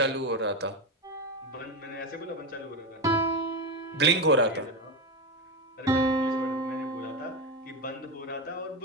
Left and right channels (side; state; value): both; normal; correlation 0.16